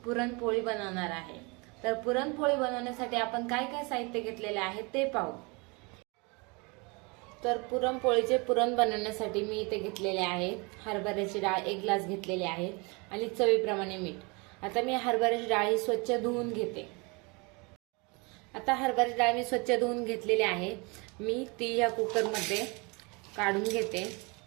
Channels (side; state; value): left; quieter; 29.1 dB